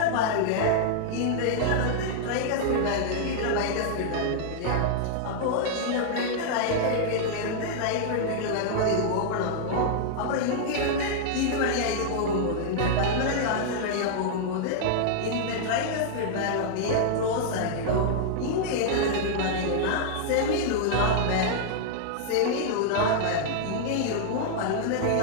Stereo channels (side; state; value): both; different; correlation -0.01